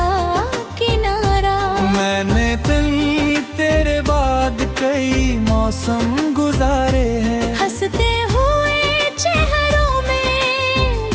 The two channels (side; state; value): both; identical; correlation 1.00